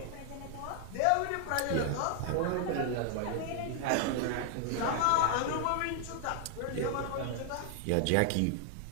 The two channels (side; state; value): both; different; correlation 0.00